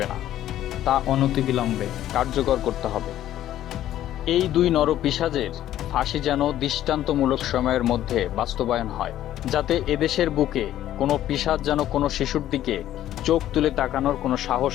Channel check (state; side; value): quieter; right; 12.6 dB